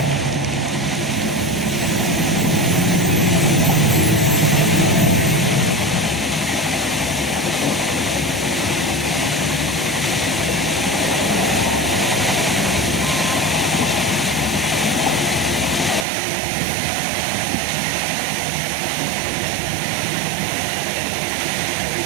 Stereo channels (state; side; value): drops out; left; at 16.1 s